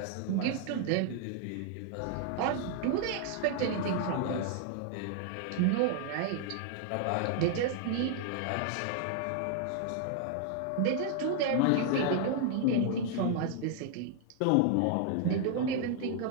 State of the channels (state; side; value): different; both; correlation 0.00